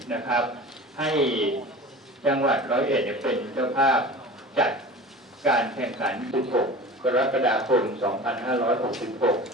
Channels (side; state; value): both; normal; correlation 0.36